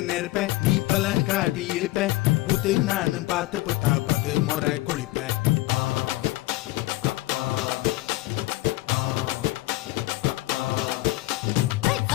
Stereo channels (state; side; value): quieter; right; 18.7 dB